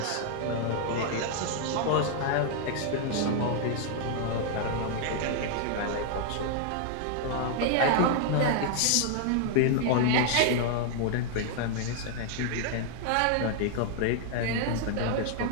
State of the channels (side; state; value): both; different; correlation 0.00